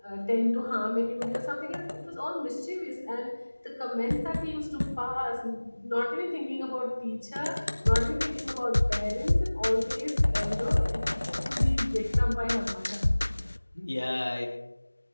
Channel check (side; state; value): both; inverted; correlation -1.00